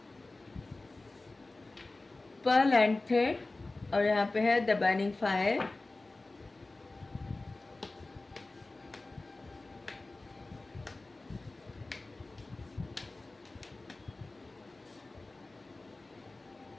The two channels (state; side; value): quieter; right; 3.1 dB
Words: पर्ल एंड थ्रेड, और यहाँ पे है the burning fire.